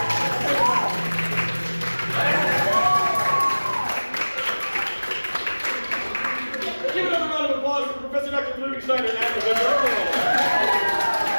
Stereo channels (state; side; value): inverted; both; correlation -1.00